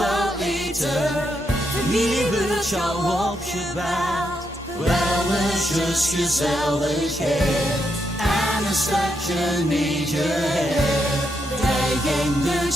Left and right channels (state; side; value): normal; both; correlation 0.81